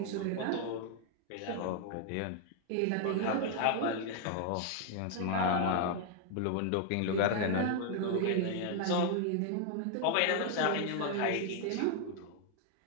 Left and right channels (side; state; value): both; different; correlation 0.00